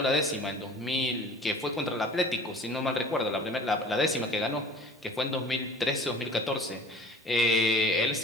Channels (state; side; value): normal; both; correlation 0.45